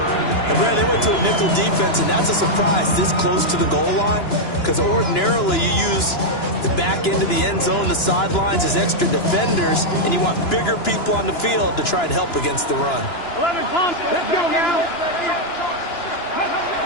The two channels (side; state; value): right; late; 2.9 ms